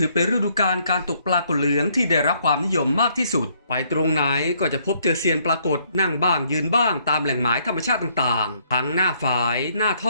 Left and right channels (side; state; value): both; inverted; correlation -0.68